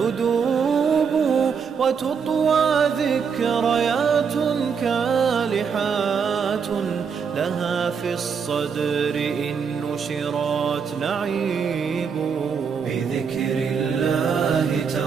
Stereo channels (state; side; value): quieter; left; 6.3 dB